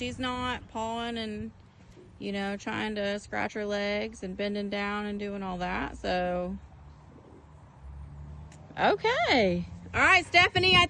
not pawing and, you know, trying to scratch her legs and bending down and doing all that. So, okay. All right, Stephanie, I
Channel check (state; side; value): identical; both; correlation 1.00